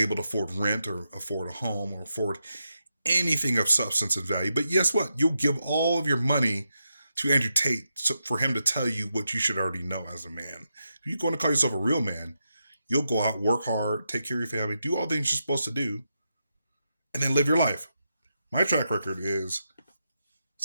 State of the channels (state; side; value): inverted; both; correlation -0.86